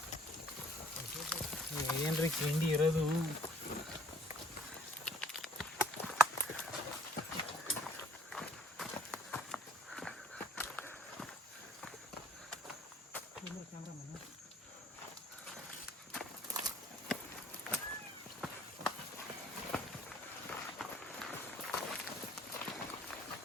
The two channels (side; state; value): both; normal; correlation 0.59